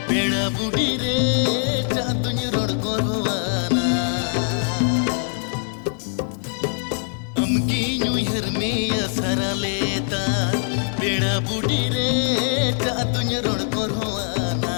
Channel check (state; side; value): silent; right; 64 dB below the other